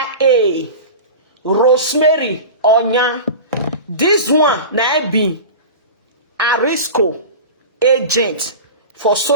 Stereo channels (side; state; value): both; inverted; correlation -0.31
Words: Rosemary Onya. This one na be Arisco agent for